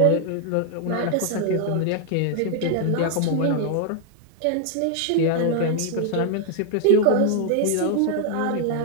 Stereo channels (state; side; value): different; both; correlation 0.00